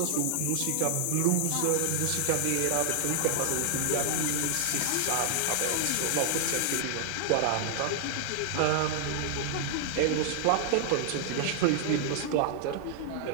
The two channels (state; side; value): different; both; correlation -0.01